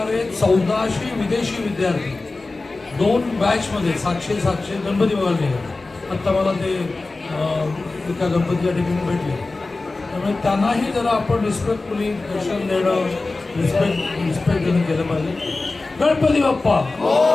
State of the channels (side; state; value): right; quieter; 3.4 dB